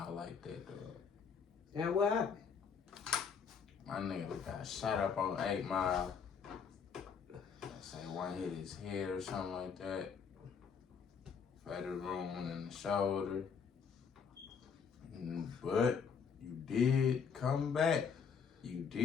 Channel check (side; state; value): right; quieter; 6.4 dB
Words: like that, dog? And what happened? My nigga got shot up on 8 Mile. Let's say one hit his head or something like that. Fatal wound in the shoulder. But you did come back. You